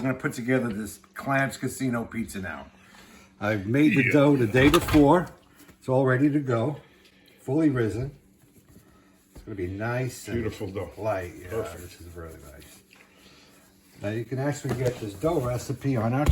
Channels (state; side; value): identical; both; correlation 1.00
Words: going to put together this Clams Casino pizza now. I've made the dough the day before. It's all ready to go. Fully risen. It's going to be nice and Beautiful dough. light. Yeah, Perfect. this is really nice. Now you can actually get this dough recipe on our